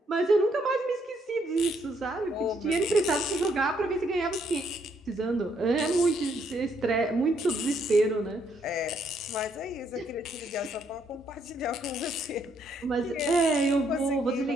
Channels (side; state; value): both; normal; correlation 0.71